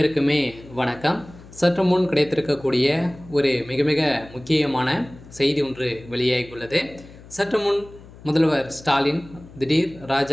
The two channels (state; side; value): noise; left; hum, 20 dB below the sound